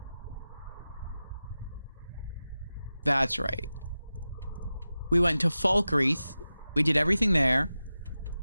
That's right. We went to Falkreath. We did everything there.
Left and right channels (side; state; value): both; inverted; correlation -0.94